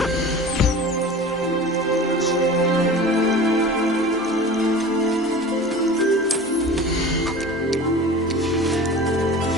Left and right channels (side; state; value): both; normal; correlation 0.37